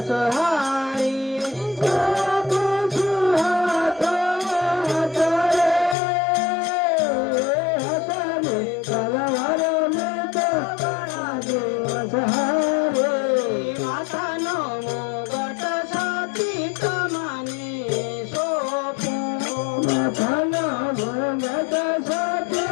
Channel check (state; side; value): drops out; right; at 6.0 s